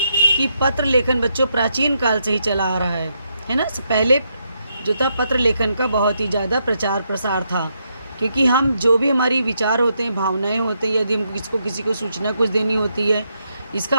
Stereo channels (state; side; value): inverted; both; correlation -0.79